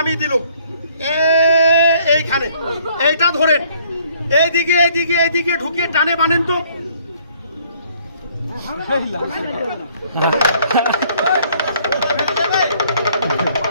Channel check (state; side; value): inverted; both; correlation -0.62